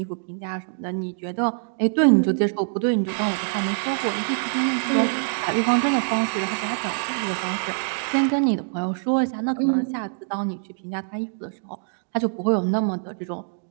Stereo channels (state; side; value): silent; left; digital silence